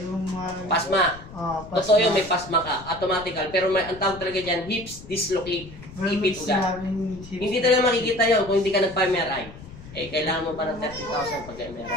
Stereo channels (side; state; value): left; noise; rumble, 16 dB below the sound